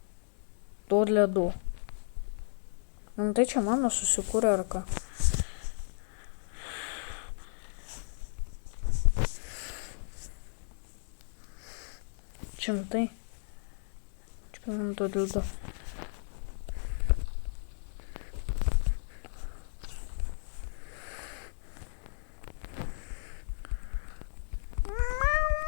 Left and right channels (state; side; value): silent; right; digital silence